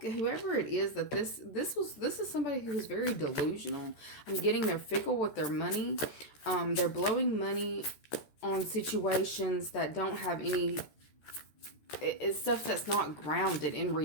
whoever it is that this is somebody who is very delusional. I'm getting they're fickle with their money. They're blowing money on situations that don't have any. It's stuff that's not grounded in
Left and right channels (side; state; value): right; late; 13 ms